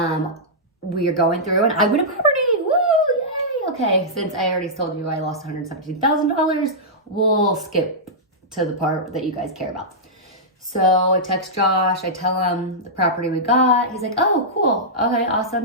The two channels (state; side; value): normal; both; correlation -0.12